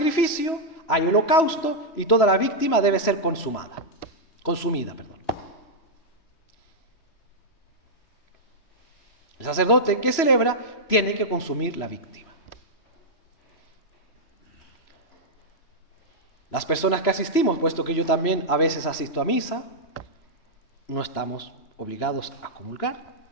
hay holocausto y toda la víctima debe ser consumida. El sacerdote que celebra tiene que consumir la víctima. Las personas que asistimos, puesto que yo también a veces asisto a misa, no estamos obligados a comulgar.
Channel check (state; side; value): late; right; 3.0 ms